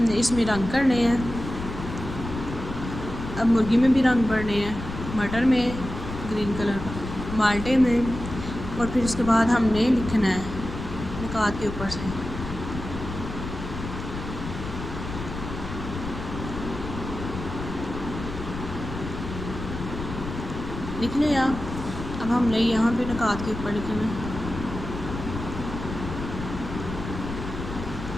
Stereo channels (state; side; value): noise; left; rumble, 8 dB below the sound